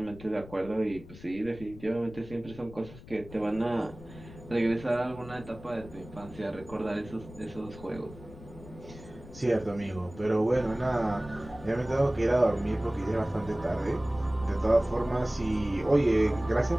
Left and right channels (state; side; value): noise; left; rumble, 17 dB below the sound